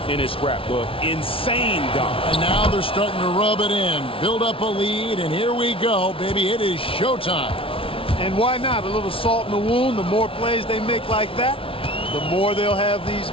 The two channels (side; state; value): right; late; 0.26 ms